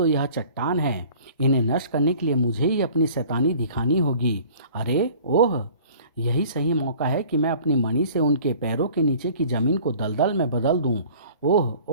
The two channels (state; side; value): inverted; both; correlation -0.49